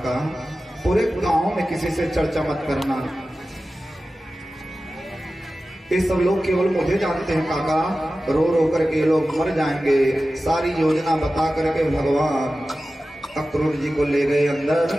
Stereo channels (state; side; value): normal; both; correlation 0.95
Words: पूरे गांव में किसी से चर्चा मत करना, ये सब लोग केवल मुझे जानते हैं काका, रो रो करके लोग मर जाएंगे। सारी योजना बता करके भगवान अक्रूर जी को ले गए अंदर।